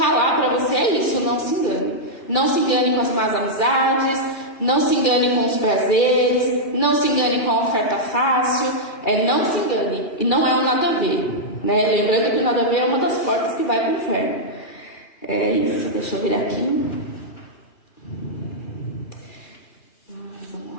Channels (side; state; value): right; late; 2.4 ms